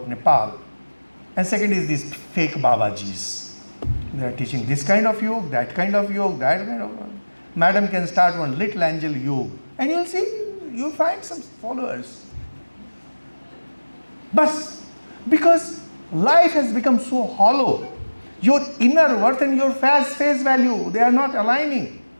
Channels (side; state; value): both; inverted; correlation -1.00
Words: Nepal. And second is these fake Babajis. They are teaching this kind of yoga, that kind of yoga, that kind of yoga. Madam can start one little angel yoga, and you'll see, you'll find some followers. But because life has become so hollow, your inner worth and your face value, they are not aligning.